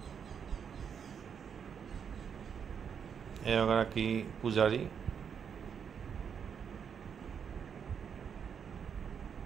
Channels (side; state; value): left; quieter; 7.2 dB